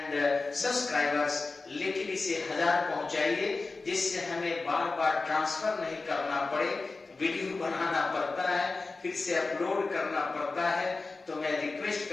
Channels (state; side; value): quieter; right; 3.7 dB